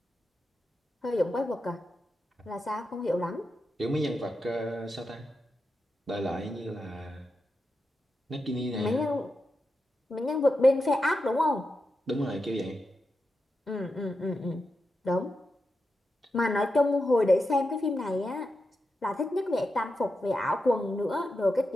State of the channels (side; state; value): both; normal; correlation 0.88